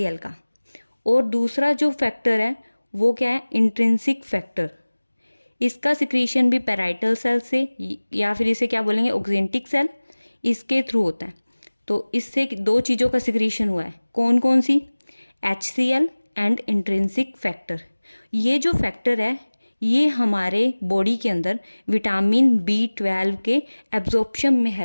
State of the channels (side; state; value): both; inverted; correlation -1.00